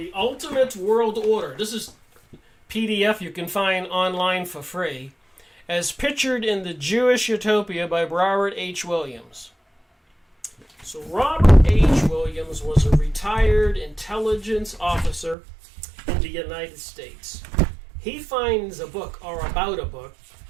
Ultimate World Order. This is PDF you can find online for free, as pictured in The Jewish Utopia by Robert H. Williams. So Robert H. Williams was a retired intelligence officer in the United States. He finds a book, or about a book,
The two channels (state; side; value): drops out; left; at 15.4 s